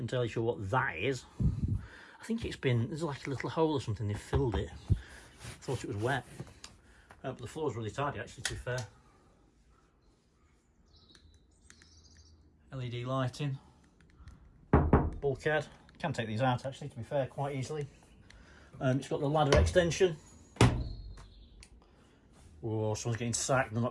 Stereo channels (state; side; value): identical; both; correlation 1.00